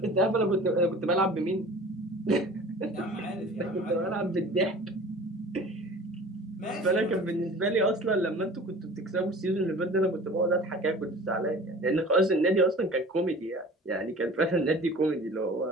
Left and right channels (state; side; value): normal; both; correlation 0.43